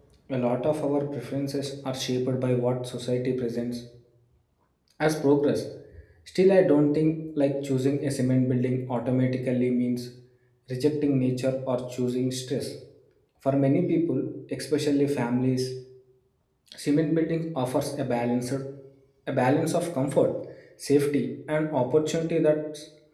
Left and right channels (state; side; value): identical; both; correlation 1.00